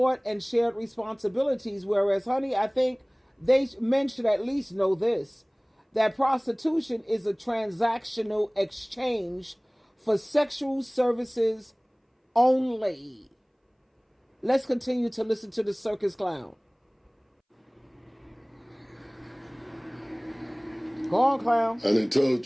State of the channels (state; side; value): identical; both; correlation 1.00